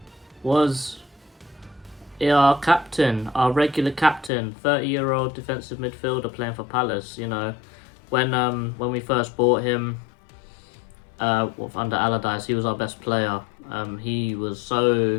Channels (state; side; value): drops out; right; at 4.3 s